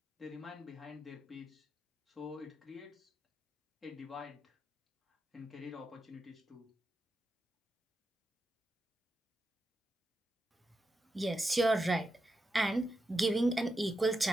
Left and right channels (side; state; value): both; normal; correlation 0.87